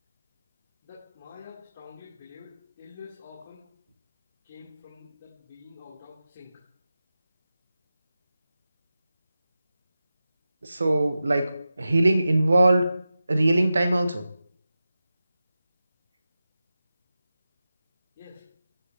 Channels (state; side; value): inverted; both; correlation -0.94